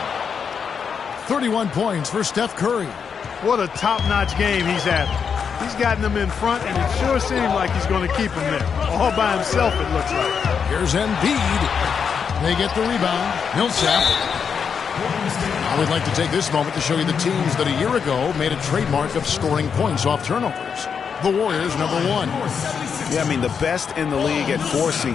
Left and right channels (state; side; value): quieter; right; 6.6 dB